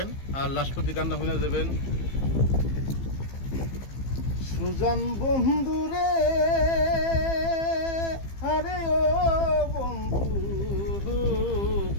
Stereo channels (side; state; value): right; late; 15 ms